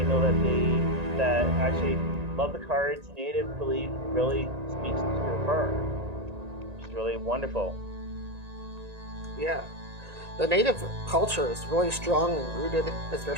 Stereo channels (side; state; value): left; late; 1.9 ms